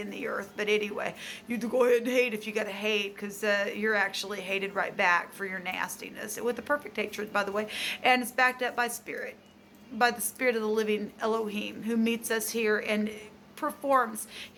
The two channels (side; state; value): both; identical; correlation 1.00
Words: the earth. But anyway, you go ahead and hate if you got to hate, because you're actually hated right back for your nastiness, with the perfect hatred, by the way. And it's backed up by spirit, by the spirit of the living Elohim, who meets us here and performs